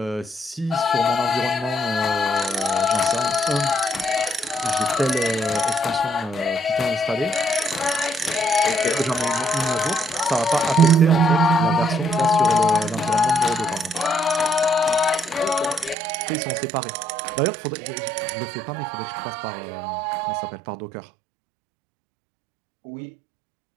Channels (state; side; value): drops out; left; at 16.0 s